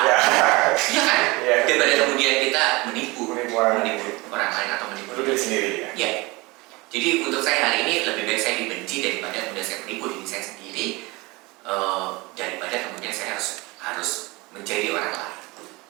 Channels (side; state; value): left; quieter; 23.7 dB